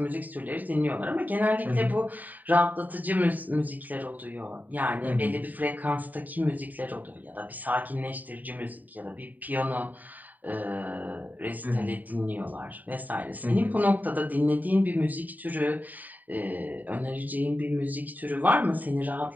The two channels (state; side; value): late; left; 0.084 ms